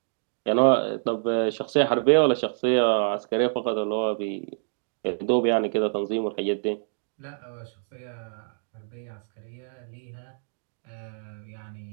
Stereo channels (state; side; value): silent; left; digital silence